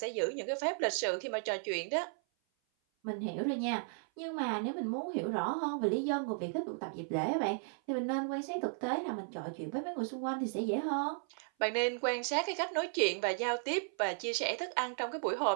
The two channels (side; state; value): left; silent; 54 dB below the other